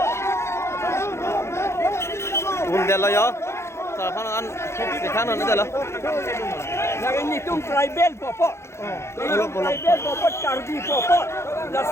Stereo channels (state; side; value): late; right; 0.13 ms